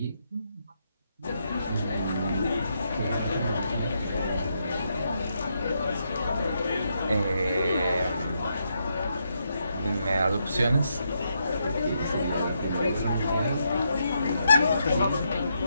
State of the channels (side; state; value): both; inverted; correlation -0.80